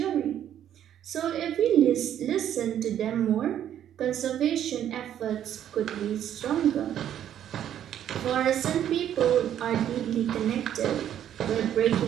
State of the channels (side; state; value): left; quieter; 10.5 dB